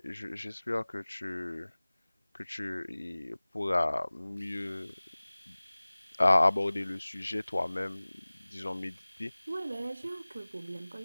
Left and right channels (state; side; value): inverted; both; correlation -1.00